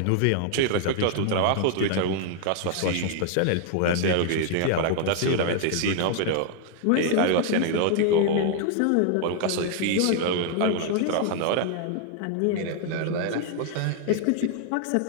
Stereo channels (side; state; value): both; different; correlation 0.00